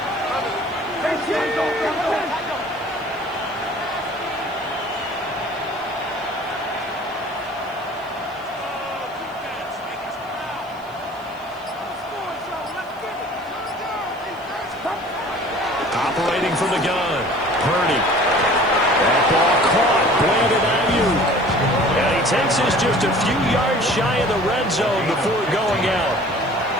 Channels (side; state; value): left; noise; hiss, 28 dB below the sound